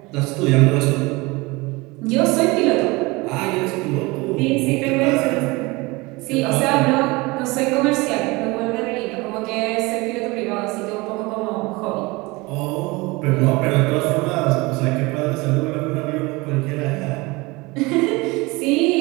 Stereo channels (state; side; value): quieter; left; 23.7 dB